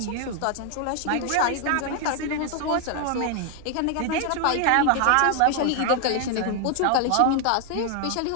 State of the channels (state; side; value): different; both; correlation 0.00